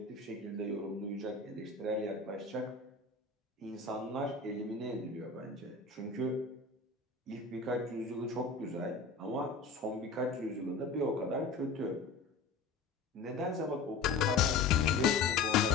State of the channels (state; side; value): quieter; right; 4.2 dB